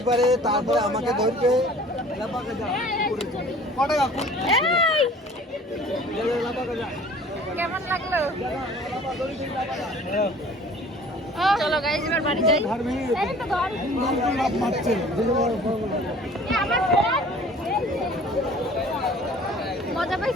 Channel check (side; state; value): both; normal; correlation 0.49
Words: পারে, তারপরে আমাকে ধরবে। কেমন লাগলো? চলো গাইস এবার বাড়ি যাই। এই তো ঘর। মজা